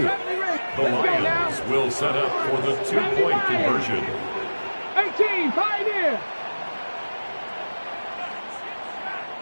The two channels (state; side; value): inverted; both; correlation -1.00